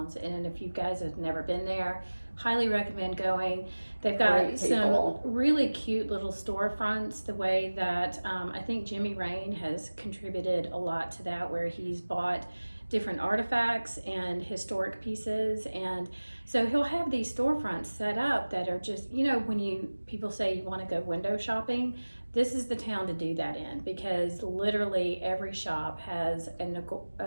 and if you guys have never been there, highly recommend going. They've got Great some people. really cute little storefronts, the way that I think Jimmy Rain has contributed a lot to that, where he's bought different artifacts and historic pieces, and So he'll have these storefronts set up that are just, when people say you want to go window shopping, this is the town to do that in, because literally every shop has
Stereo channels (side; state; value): both; inverted; correlation -1.00